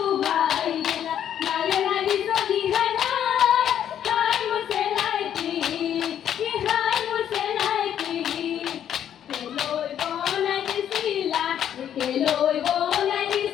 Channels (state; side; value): quieter; right; 9.9 dB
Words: ভাই নালে লাগি চলি হাই বসে লাইকি কেলৈ বনাই